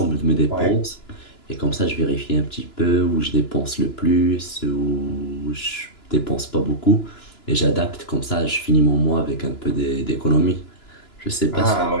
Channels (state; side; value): late; right; 2.9 ms